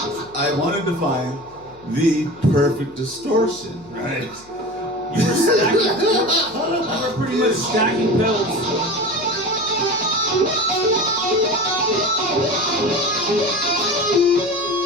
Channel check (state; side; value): noise; left; hum, 26 dB below the sound